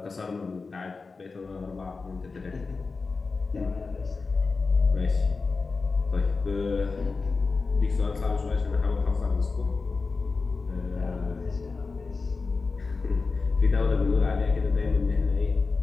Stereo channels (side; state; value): right; quieter; 4.3 dB